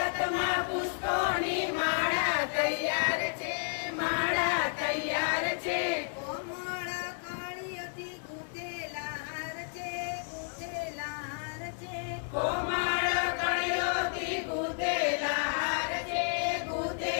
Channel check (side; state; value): right; silent; 57 dB below the other